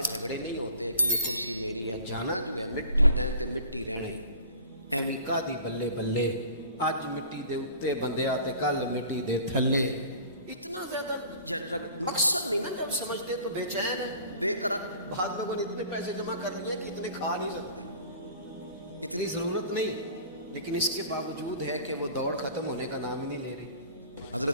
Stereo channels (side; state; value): both; inverted; correlation -0.45